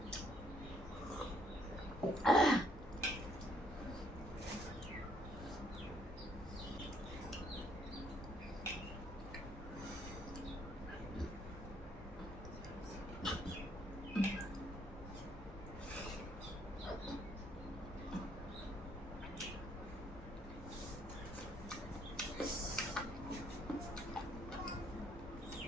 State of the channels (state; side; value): normal; both; correlation 0.67